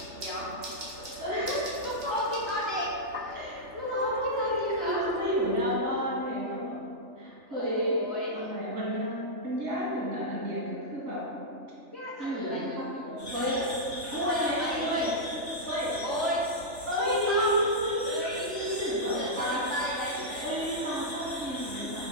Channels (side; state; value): left; late; 3.4 ms